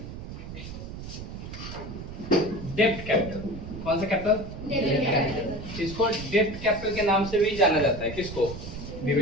डेब्ट कैपिटल। कौन सा कैपिटल? डेब्ट कैपिटल। इसको डेब्ट कैपिटल के नाम से भी जाना जाता है। किसको?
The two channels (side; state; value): right; noise; rumble, 10 dB below the sound